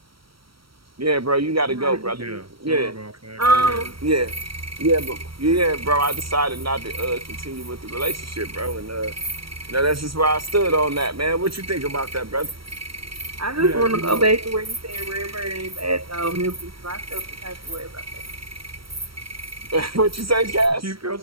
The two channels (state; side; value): late; left; 0.75 ms